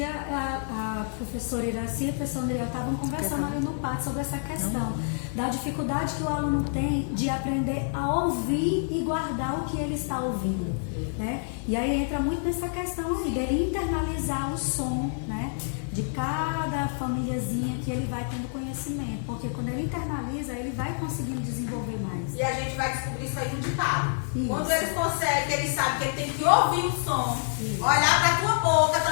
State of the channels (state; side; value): silent; right; digital silence